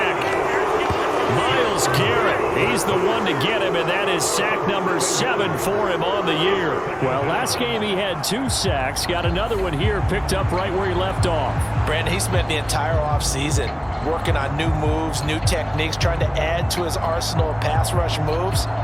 Myles Garrett, he's the one to get him, and that is sack number 7 for him on the year. Well, last game he had 2 sacks. Got another one here, picked up right where he left off. Brandon, he spent the entire offseason working on new moves, new techniques, trying to add to his arsenal of pass rush moves.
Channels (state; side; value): identical; both; correlation 1.00